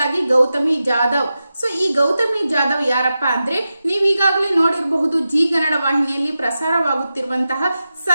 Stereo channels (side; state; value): both; inverted; correlation -0.92